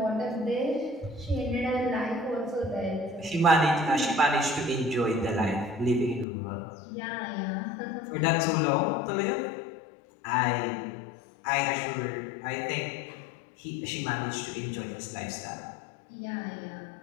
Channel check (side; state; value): right; drops out; at 6.2 s